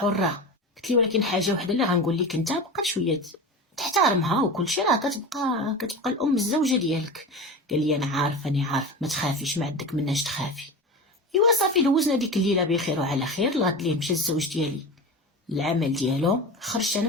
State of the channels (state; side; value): normal; both; correlation 0.28